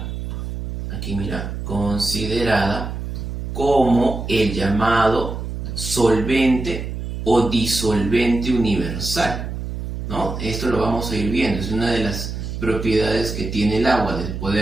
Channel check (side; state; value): right; noise; hum, 6 dB below the sound